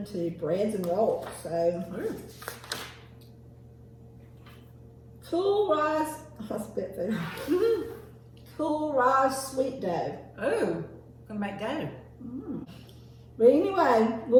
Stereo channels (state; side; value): identical; both; correlation 1.00